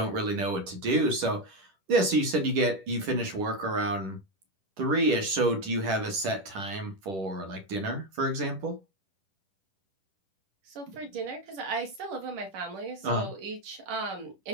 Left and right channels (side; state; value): left; late; 10 ms